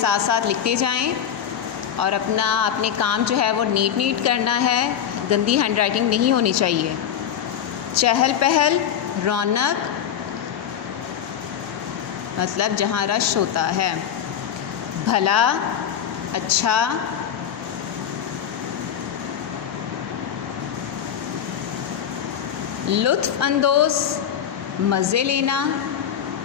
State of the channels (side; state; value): right; quieter; 9.0 dB